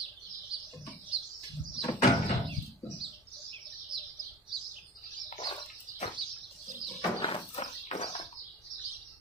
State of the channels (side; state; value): both; normal; correlation 0.38